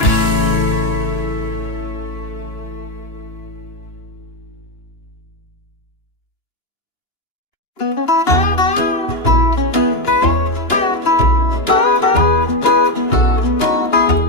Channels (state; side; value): late; right; 2.9 ms